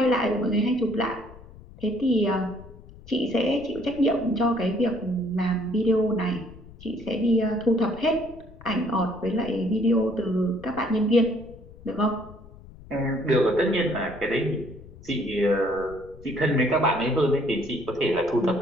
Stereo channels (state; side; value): noise; left; rumble, 19 dB below the sound